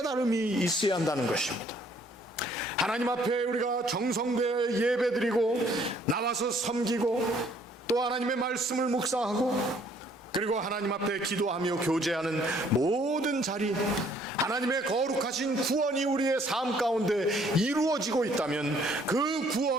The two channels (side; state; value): both; normal; correlation 0.62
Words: 있어야 한다는 것입니다. 하나님 앞에 우리가 정성되어 예배드리고 나와서 섬기고 또 하나님의 말씀을 묵상하고 그리고 하나님 앞에 기도하며 교제하는 모든 자리, 하나님의 거룩하신 구원이 우리의 삶 가운데 이루어지고 있다면 그